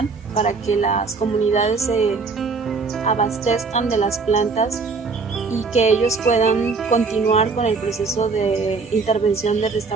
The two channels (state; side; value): quieter; left; 4.5 dB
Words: para que las comunidades se abastezcan de las plantas y que ellos puedan continuar con el proceso de intervención de